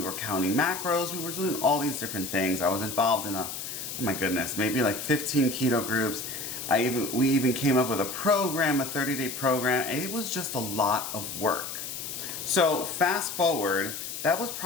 counting macros, we were doing all these different things. I was involved in oh my goodness, maybe like 15 keto groups. We even came up with a program, a 30-day program, and it was just a lot of work. So fast forward, that was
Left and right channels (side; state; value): left; noise; hiss, 7 dB below the sound